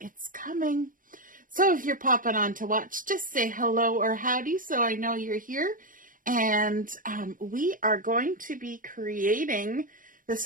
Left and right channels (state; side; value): late; left; 0.39 ms